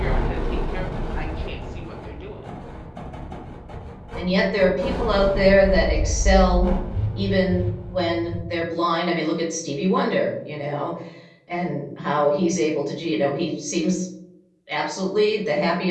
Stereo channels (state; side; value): identical; both; correlation 1.00